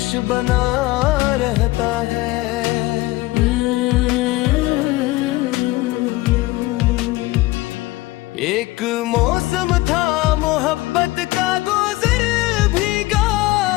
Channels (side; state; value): right; quieter; 19.4 dB